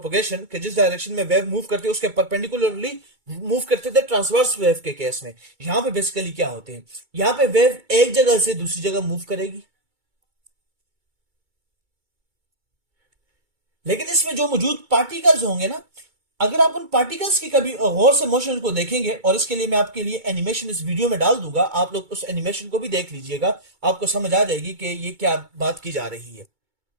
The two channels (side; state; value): left; late; 2.2 ms